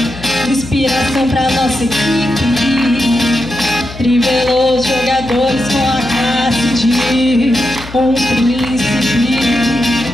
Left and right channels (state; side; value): noise; left; hum, 14 dB below the sound